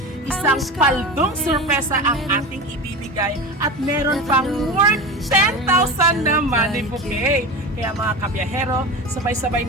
isang paldong sorpresa ang ating ibibigay at meron pang worth 10,000 na money bouquet. Kaya mga kabiyahero, sabay-sabay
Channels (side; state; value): both; normal; correlation 0.27